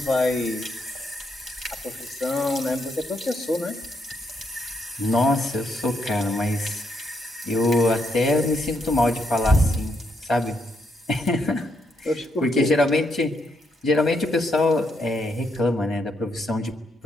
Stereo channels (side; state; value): both; normal; correlation 0.77